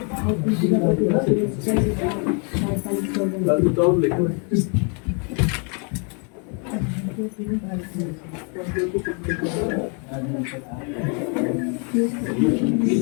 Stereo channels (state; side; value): quieter; right; 37.7 dB